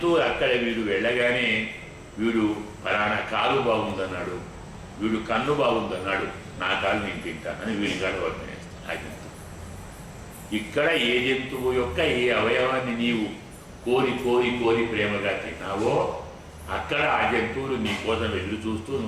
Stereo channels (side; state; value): both; identical; correlation 1.00